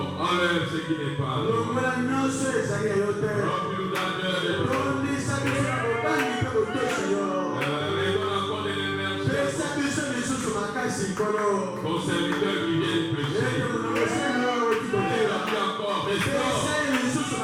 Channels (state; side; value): identical; both; correlation 1.00